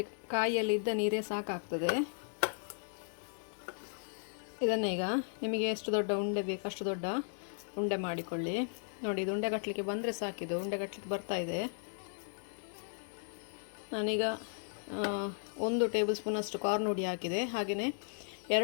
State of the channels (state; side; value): silent; right; digital silence